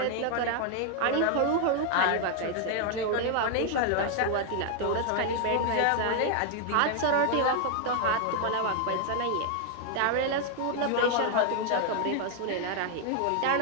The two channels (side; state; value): both; different; correlation 0.00